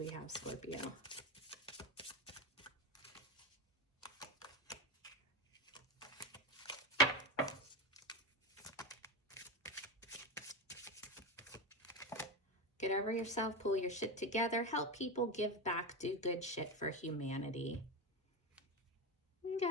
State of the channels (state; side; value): normal; both; correlation 0.18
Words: have, Scorpio? Get over yourself, pull your shit together, help people, give back, do good shit for humanity.